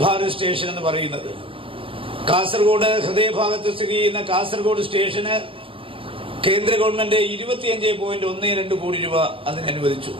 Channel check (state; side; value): late; left; 0.26 ms